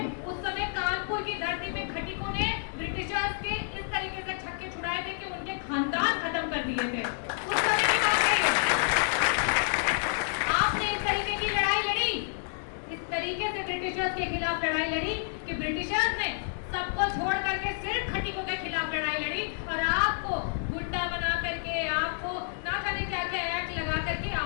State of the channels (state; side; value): silent; right; digital silence